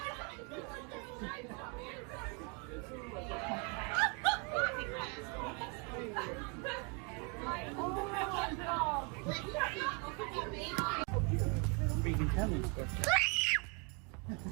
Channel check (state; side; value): quieter; left; 32.6 dB